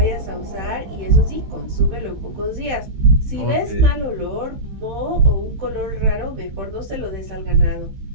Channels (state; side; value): late; left; 16 ms